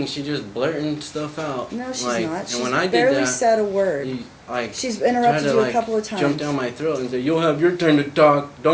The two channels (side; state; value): both; identical; correlation 1.00